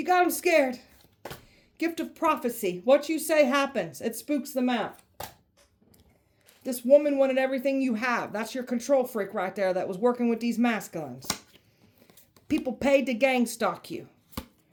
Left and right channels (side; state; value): both; identical; correlation 1.00